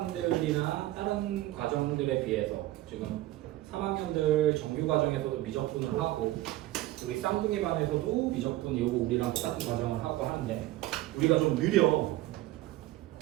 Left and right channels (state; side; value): quieter; left; 16.2 dB